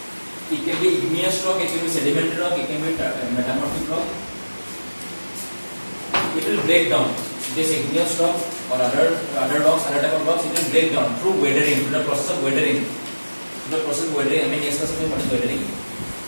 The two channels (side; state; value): both; inverted; correlation -1.00